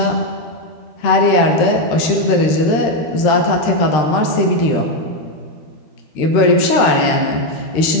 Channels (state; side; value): late; right; 13 ms